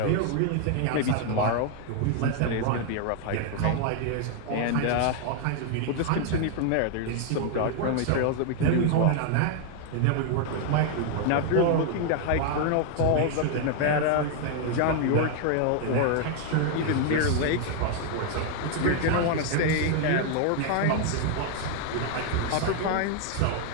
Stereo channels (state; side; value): different; both; correlation 0.00